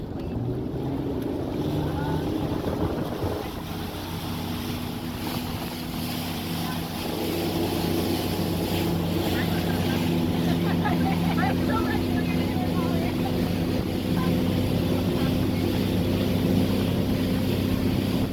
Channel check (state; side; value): identical; both; correlation 1.00